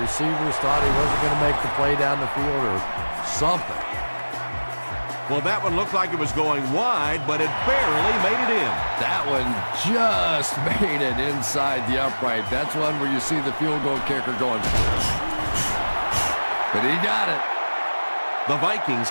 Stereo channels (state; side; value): inverted; both; correlation -1.00